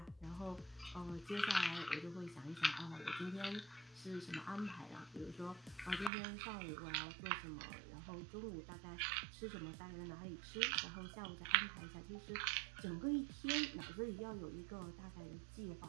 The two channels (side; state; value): left; drops out; at 6.1 s